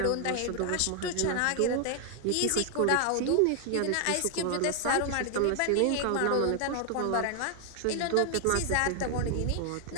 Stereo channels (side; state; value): both; different; correlation 0.00